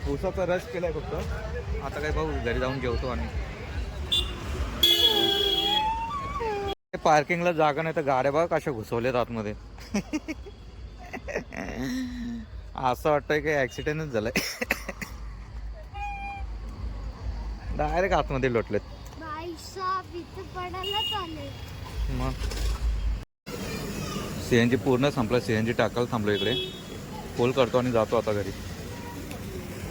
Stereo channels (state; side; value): identical; both; correlation 1.00